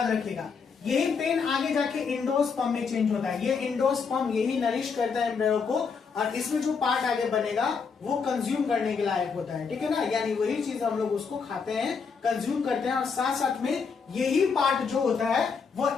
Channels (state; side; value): quieter; right; 5.6 dB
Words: रखिएगा। यही पेन आगे जाके एंडोस्पर्म में चेंज होता है। ये एंडोस्पर्म यही नरिश करता है एम्ब्रियो को, और इसमें जो पार्ट आगे बनेगा वो कंज्यूम करने के लायक होता है, ठीक है ना। यानी वही चीज हम लोग उसको खाते हैं, कंज्यूम करते हैं, और साथ साथ में यही पार्ट जो होता है वो